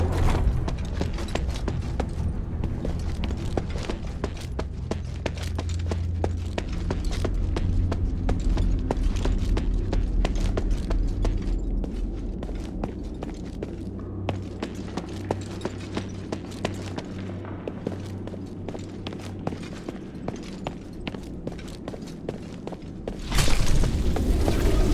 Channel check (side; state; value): both; identical; correlation 1.00